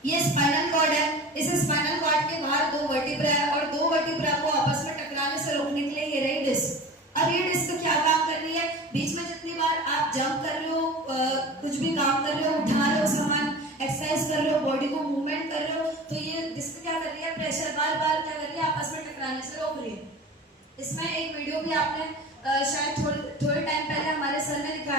ये स्पाइनल कॉर्ड है। इस स्पाइनल कॉर्ड के बाहर 2 वर्टिब्रा है, और 2 वर्टिब्रा को आपस में टकराने से रोकने के लिए ये रही डिस्क। अब ये डिस्क क्या काम कर रही है, बीच में जितनी बार आप जंप कर रहे हो, कुछ भी काम कर रहे हो, उठा रहे हो सामान, एक्सरसाइज कर रहे हो, बॉडी को मूवमेंट कर रहे हो, तो ये डिस्क क्या कर रही है, प्रेशर बार बार क्या कर रही है, आपस में टकराने से रोक रही है। इसमें एक वीडियो भी आपने शायद थोड़े टाइम पहले हमारे सर ने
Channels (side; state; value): both; normal; correlation 0.36